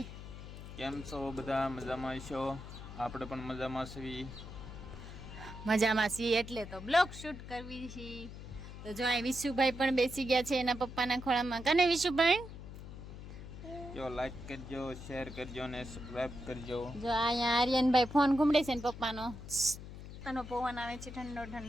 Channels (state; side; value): noise; left; hum, 12 dB below the sound